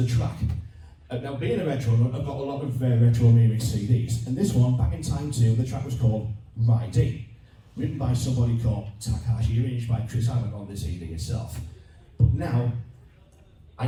track? Now, being a retro nut, I've got a lot of retro remix CDs, and this one, back in time too, the track was called Riding, written by somebody called Takashi, arranged by Chris Allen on the CD itself. But now, I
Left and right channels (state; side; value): identical; both; correlation 1.00